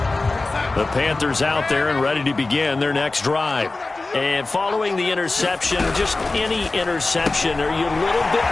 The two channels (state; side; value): quieter; right; 3.3 dB